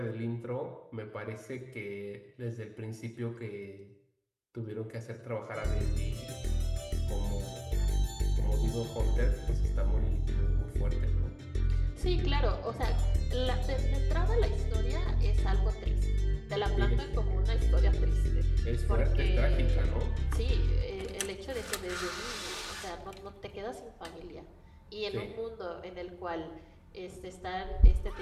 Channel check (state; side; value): identical; both; correlation 1.00